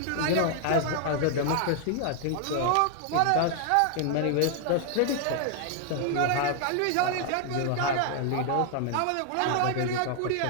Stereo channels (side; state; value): both; different; correlation 0.00